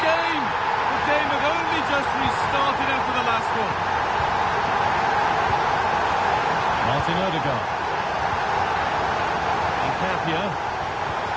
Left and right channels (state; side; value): identical; both; correlation 1.00